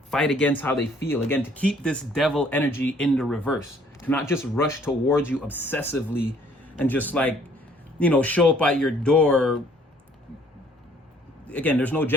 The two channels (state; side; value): normal; both; correlation 0.60